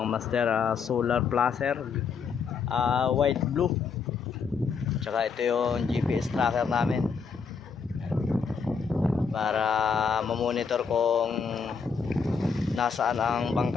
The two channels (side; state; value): right; quieter; 5.7 dB